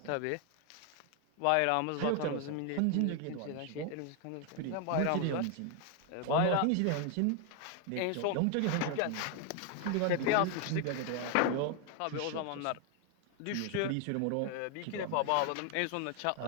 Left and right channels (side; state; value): both; different; correlation 0.01